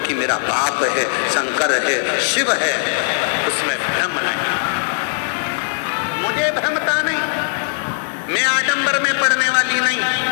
मेरा बाप है, शंकर है, शिव है। उसमें भ्रम नहीं, मुझे भ्रमता नहीं, मैं आडंबर में पड़ने वाली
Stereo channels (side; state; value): right; silent; 67 dB below the other